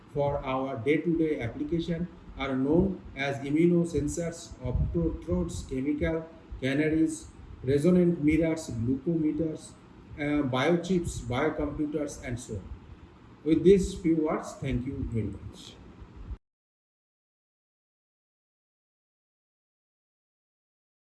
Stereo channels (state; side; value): identical; both; correlation 1.00